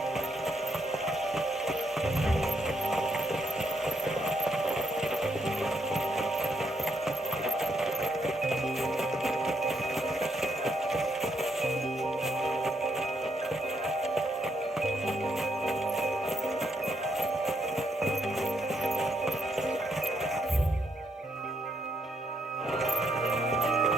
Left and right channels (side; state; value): both; normal; correlation 0.75